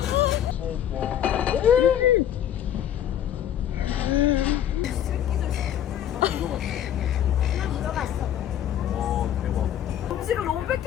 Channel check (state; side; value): quieter; right; 10.4 dB